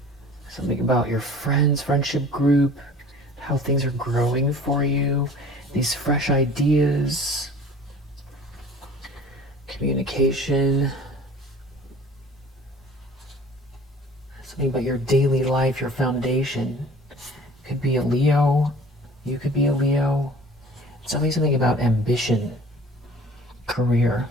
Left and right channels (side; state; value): both; normal; correlation 0.46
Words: Something about your friends, friendship group, how things are growing for you. These fresh ideas. Communication. Something about your daily life, your foundation. Could be a Leo. You could be a Leo. Something about ambition, career.